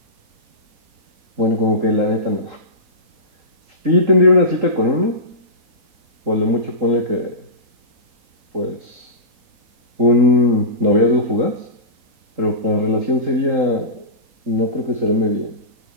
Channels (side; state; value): left; late; 3.8 ms